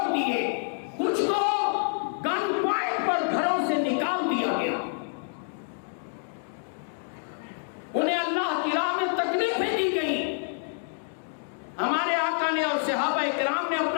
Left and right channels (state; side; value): silent; right; 60 dB below the other